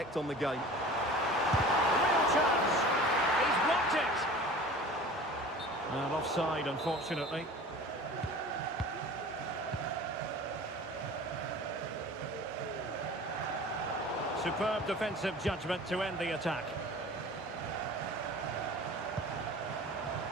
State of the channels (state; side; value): normal; both; correlation 0.41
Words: on the game. Real chance. He's blocked it. And offside, unfortunately. Superb defensive judgment to end the attack.